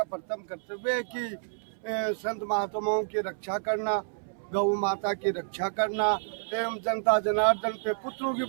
प्रथम कर्तव्य है कि संत महात्माओं की रक्षा करना, गौ माता की रक्षा करना एवं जनता जनार्दन पे पुत्रों की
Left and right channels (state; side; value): silent; left; 58 dB below the other